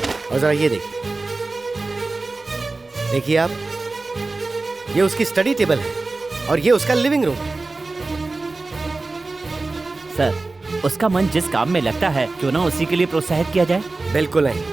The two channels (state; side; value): quieter; left; 3.4 dB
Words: और जरा ये देखिए आप, ये उसकी स्टडी टेबल है और ये उसका लिविंग रूम है। सर, उसका मन जिस काम में लगता है क्यों ना उसी के लिए प्रोत्साहित किया जाए? बिल्कुल नहीं।